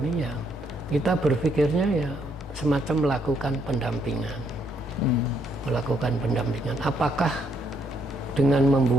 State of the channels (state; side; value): normal; both; correlation 0.73